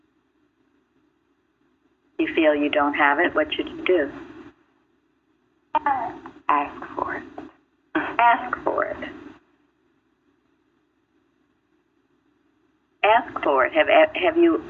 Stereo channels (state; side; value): identical; both; correlation 1.00